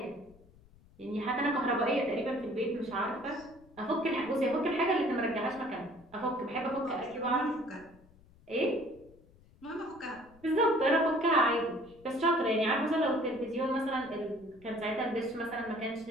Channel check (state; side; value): noise; left; rumble, 26 dB below the sound